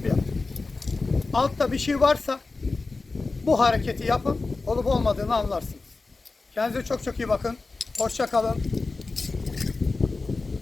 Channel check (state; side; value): quieter; right; 3.7 dB